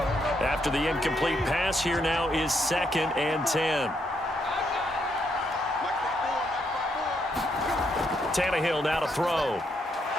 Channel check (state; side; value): normal; both; correlation 0.76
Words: After the incomplete pass, here now is 2nd and 10. Tannehill now to throw.